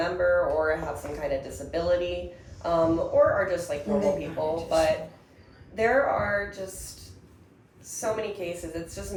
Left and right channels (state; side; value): identical; both; correlation 1.00